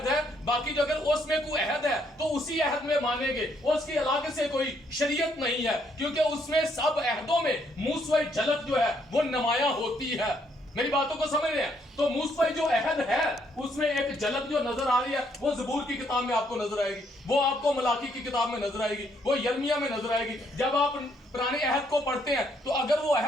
ہے، باقی جو اگر اس میں کوئی عہد ہے تو اسی عہد میں مانیں گے، اس کی علاقے سے کوئی شریعت نہیں ہے، کیونکہ اس میں سب عہدوں میں موسوی جھلک جو ہے وہ نمایاں ہوتی ہے. میری باتوں کو سمجھ رہے ہیں؟ تو موسوی جو عہد ہے اس میں ایک جھلک جو نظر آ رہی ہے وہ زبور کی کتاب میں آپ کو نظر آئے گی، وہ آپ کو ملاکی کی کتاب میں نظر آئے گی، وہ یرمیہ میں نظر آئے گی. جب آپ پرانے عہد کو پڑھتے ہیں تو اگر وہ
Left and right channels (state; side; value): normal; both; correlation 0.71